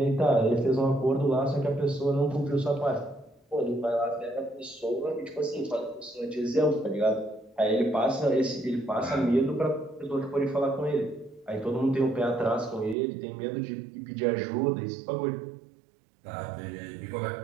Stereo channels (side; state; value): left; drops out; at 13.0 s